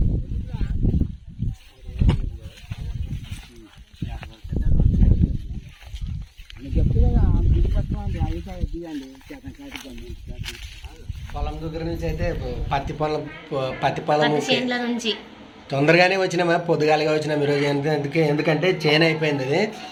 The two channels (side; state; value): both; identical; correlation 1.00